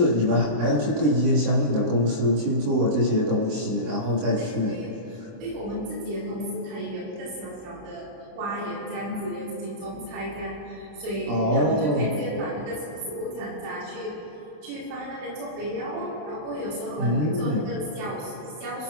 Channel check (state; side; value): late; left; 27 ms